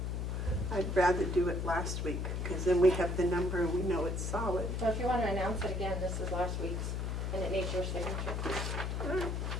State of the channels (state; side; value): noise; left; hum, 1 dB below the sound